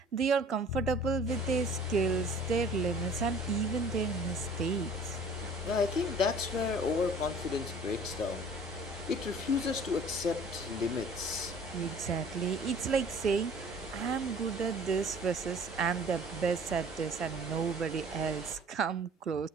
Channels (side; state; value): both; normal; correlation 0.50